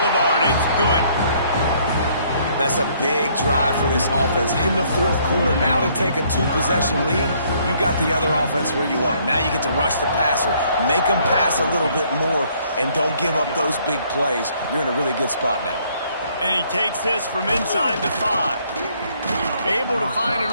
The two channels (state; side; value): inverted; both; correlation -0.65